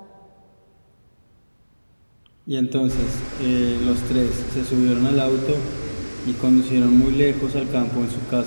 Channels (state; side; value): inverted; both; correlation -1.00